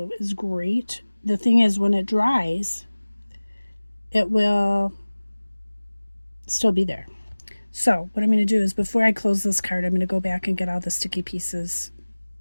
is great. The thing is, when it dries, it will still be there. So what I'm going to do is, before I close this card, I'm going to go back and get all the sticky bits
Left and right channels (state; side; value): inverted; both; correlation -1.00